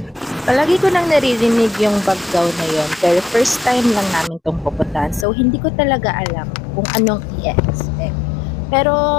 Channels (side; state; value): right; drops out; at 5.2 s